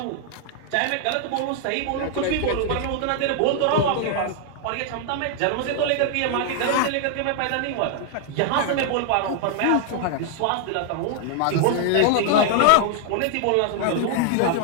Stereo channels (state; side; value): different; both; correlation 0.00